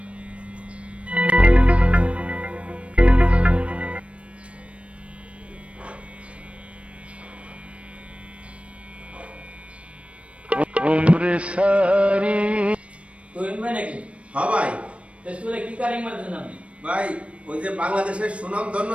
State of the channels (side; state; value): left; late; 0.062 ms